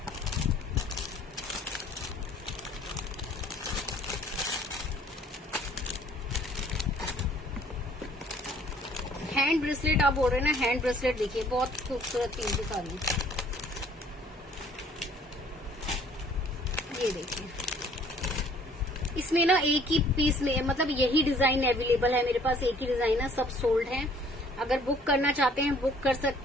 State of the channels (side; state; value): both; normal; correlation 0.57